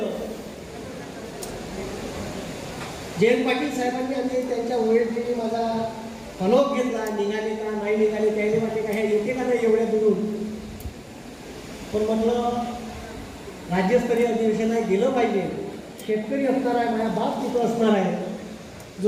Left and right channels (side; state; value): both; identical; correlation 1.00